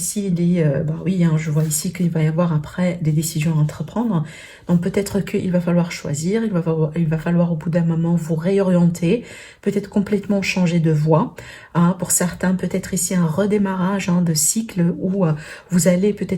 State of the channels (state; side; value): identical; both; correlation 1.00